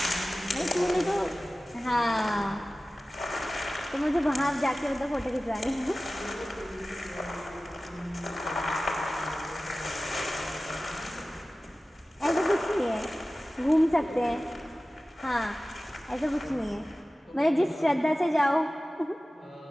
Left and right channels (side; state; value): both; normal; correlation 0.96